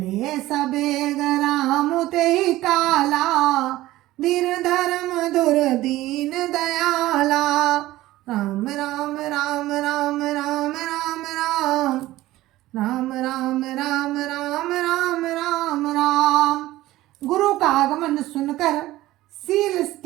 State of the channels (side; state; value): left; quieter; 16.5 dB